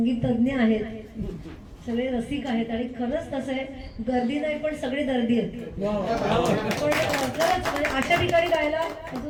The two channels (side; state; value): both; identical; correlation 1.00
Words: तज्ञ आहेत, सगळे रसिक आहेत आणि खरंच तसं आहे, गर्दी नाही पण सगळे दर्दी आहेत. पण खरंच म्हणजे अशा ठिकाणी गायला